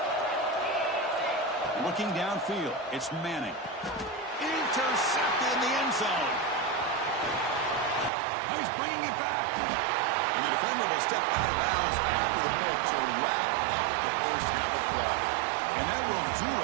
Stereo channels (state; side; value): drops out; left; at 8.1 s